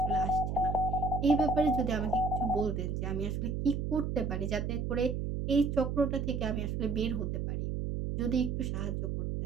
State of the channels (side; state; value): right; noise; hum, 2 dB below the sound